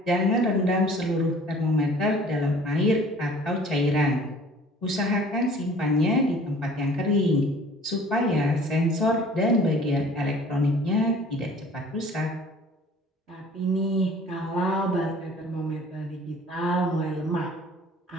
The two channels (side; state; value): both; normal; correlation 0.50